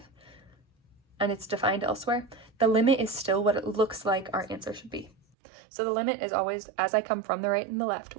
and it's defined elsewhere, the limit is still what it looks like our answer should be. So the limit is always, as I come from the right and the left,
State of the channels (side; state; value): left; drops out; at 5.2 s